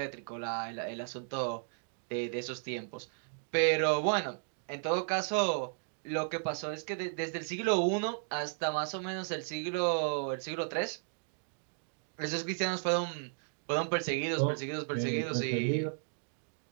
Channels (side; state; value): left; silent; digital silence